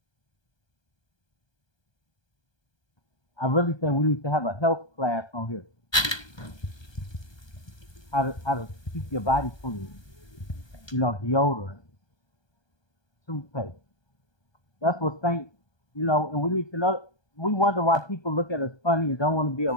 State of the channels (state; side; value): late; right; 1.2 ms